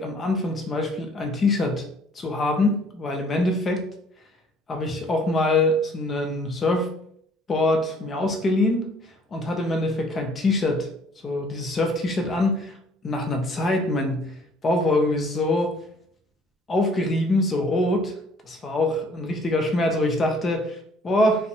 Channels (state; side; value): normal; both; correlation 0.58